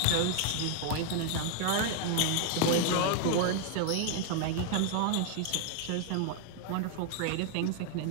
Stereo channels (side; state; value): both; different; correlation 0.00